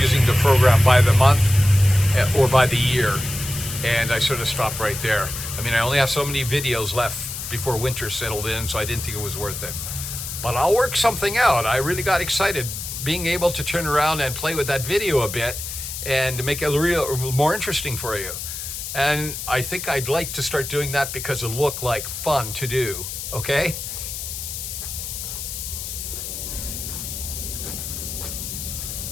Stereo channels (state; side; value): noise; left; hiss, 7 dB below the sound